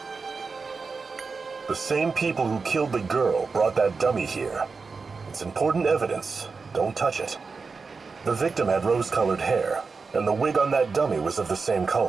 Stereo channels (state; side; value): quieter; left; 4.6 dB